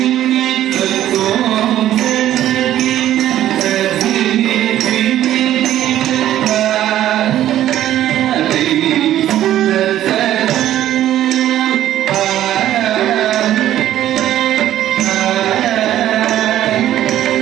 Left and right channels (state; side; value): quieter; left; 12.5 dB